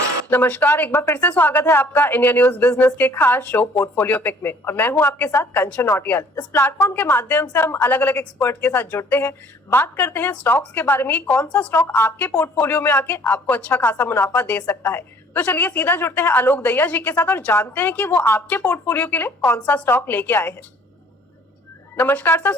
नमस्कार, एक बार फिर से स्वागत है आपका इंडिया न्यूज बिजनेस के खास शो पोर्टफोलियो पिक में। और मैं हूं आपके साथ कंचन नौटियाल। इस प्लेटफॉर्म के माध्यम से हम अलग अलग एक्सपर्ट के साथ जुड़ते हैं, बात करते हैं स्टॉक्स के बारे में, कौन सा स्टॉक आपके पोर्टफोलियो में आके आपको अच्छा खासा मुनाफा दे सकता है। तो चलिए सीधा जुड़ते हैं आलोक दहिया जी के साथ और जानते हैं कि वो आपके पोर्टफोलियो के लिए कौन सा स्टॉक लेके आए हैं। नमस्कार सर,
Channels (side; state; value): both; normal; correlation 0.56